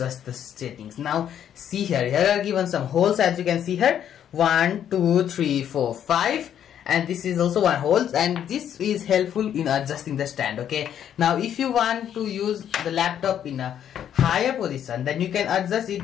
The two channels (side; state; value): right; quieter; 9.7 dB